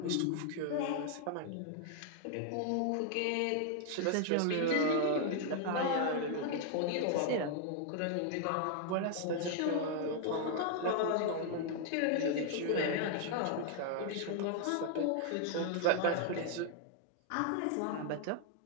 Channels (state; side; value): different; both; correlation 0.00